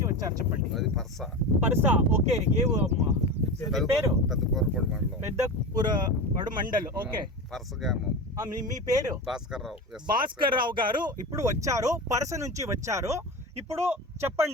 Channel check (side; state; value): both; normal; correlation 0.25